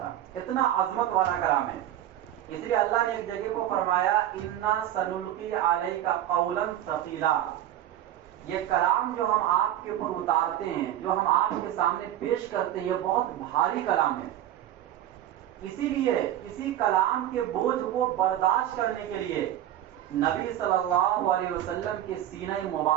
اتنا عظمت والا کلام ہے. اس لیے اللہ نے ایک جگہ کو فرمایا انا سنلقی علیک قولا ثقیلا، یہ کلام جو ہم آپ کے اوپر اتارتے ہیں، جو ہم آپ کے سامنے پیش کرتے ہیں، یہ بہت بھاری کلام ہے. اسی لیے اسی کلام کے بوجھ کو برداشت کرنے کے لیے نبی صلی اللہ علیہ وسلم کے سینہ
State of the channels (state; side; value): quieter; left; 12.2 dB